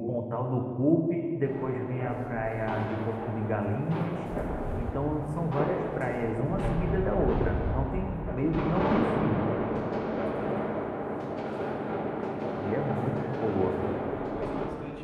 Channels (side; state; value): both; identical; correlation 1.00